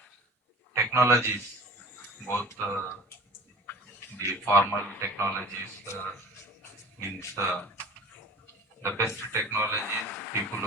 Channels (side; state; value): both; normal; correlation 0.42